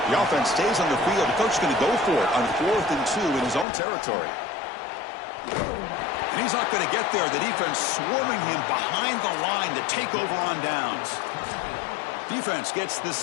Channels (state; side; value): drops out; right; at 3.7 s